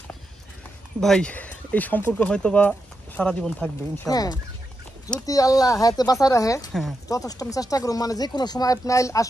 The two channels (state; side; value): normal; both; correlation 0.86